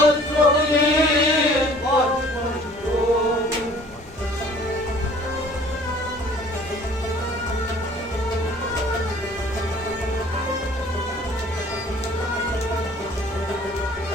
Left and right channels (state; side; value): normal; both; correlation 0.52